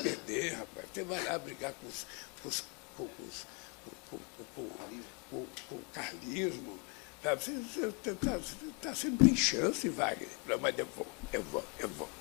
rapaz. Você vai lá brigar com o carlismo. Sabe? Você está sendo bem chance, Wagner. Não, mas eu vou. Eu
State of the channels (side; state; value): right; quieter; 30.5 dB